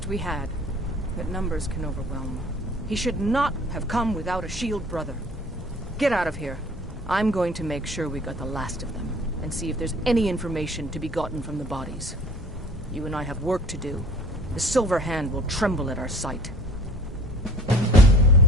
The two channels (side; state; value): both; normal; correlation 0.46